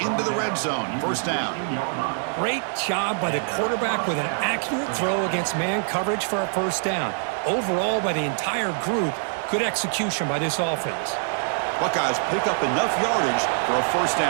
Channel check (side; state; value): left; silent; digital silence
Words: the red zone. 1st down. Great job by the quarterback with an accurate throw against man coverage for a 1st down. Overall, by the entire group, good execution by this offense. Buckeyes pick up enough yardage for a 1st